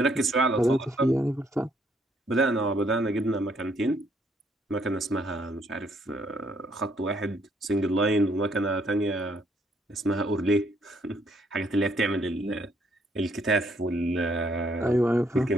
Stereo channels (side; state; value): both; normal; correlation 0.69